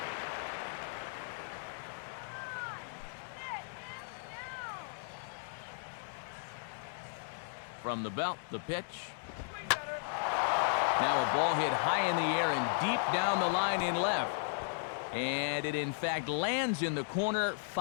From the belt, the pitch. Now a ball hit high in the air and deep down the line in left. And it in fact lands in the corner,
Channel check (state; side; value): silent; right; digital silence